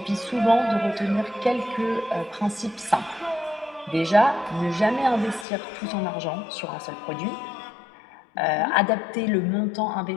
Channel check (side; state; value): right; drops out; at 5.5 s